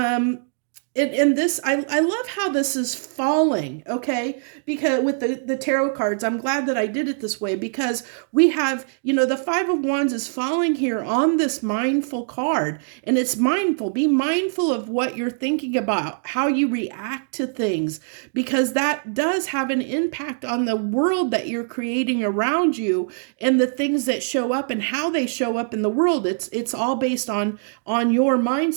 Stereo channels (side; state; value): left; silent; digital silence